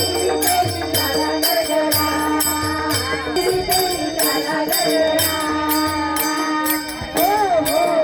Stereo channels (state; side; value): identical; both; correlation 1.00